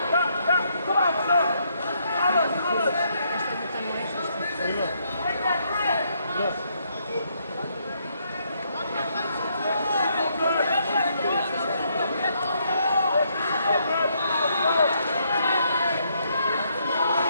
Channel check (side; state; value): both; inverted; correlation -0.74